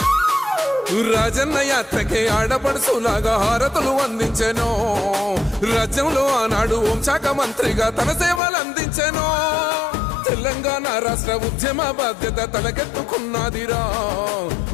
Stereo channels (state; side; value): drops out; right; at 8.4 s